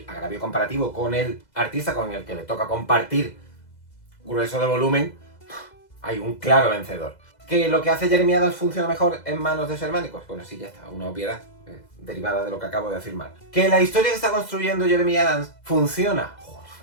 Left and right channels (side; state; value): right; late; 2.0 ms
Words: agravio comparativo con el artista con el que le toca compartir grueso de volumen, hay un claro vencedor. ¿Que lo que hace Jeremy Adams funciona mejor en manos de su hermano? Pues bueno, sí, ya está, una obviedad derivada de lo que acabo de afirmar. ¿Que la historia que está construyendo Jeremy Adams funciona? Joder,